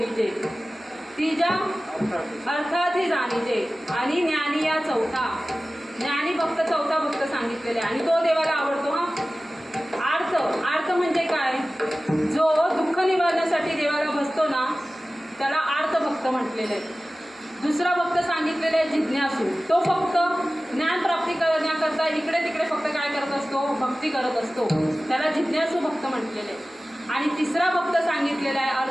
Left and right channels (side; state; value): both; normal; correlation 0.96